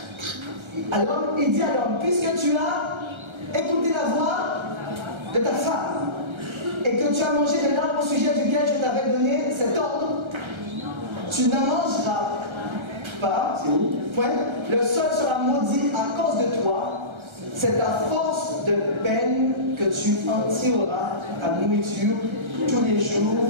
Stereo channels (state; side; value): late; left; 1.3 ms